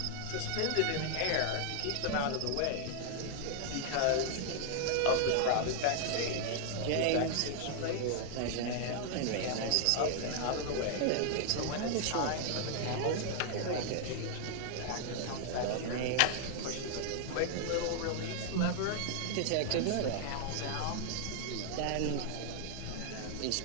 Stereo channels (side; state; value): both; different; correlation 0.00